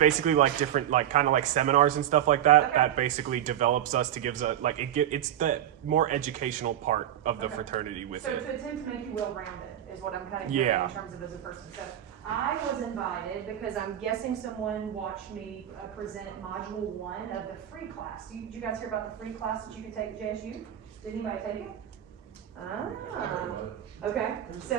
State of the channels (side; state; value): left; quieter; 11.1 dB